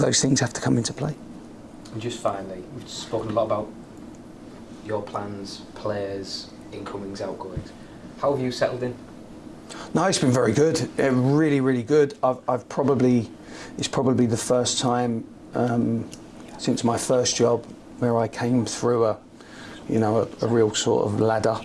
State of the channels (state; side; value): identical; both; correlation 1.00